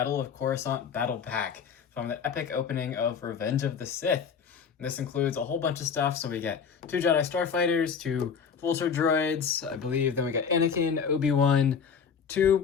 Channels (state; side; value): quieter; right; 6.6 dB